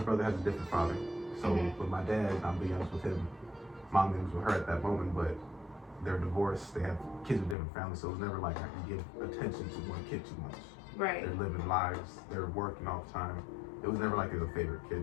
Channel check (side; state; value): right; drops out; at 7.6 s